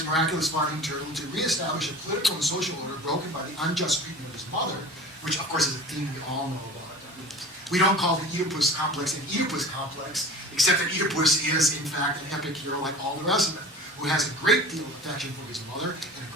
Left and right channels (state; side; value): normal; both; correlation 0.39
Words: miraculous farting turtle to reestablish a political and social order broken by the unjust treatment of his mother, which of course is a theme we all know about. We don't call the Oedipus complex an Oedipus complex, except that Oedipus is, in fact, an epic hero like all the rest of them, who has a great deal of affection for his mother and a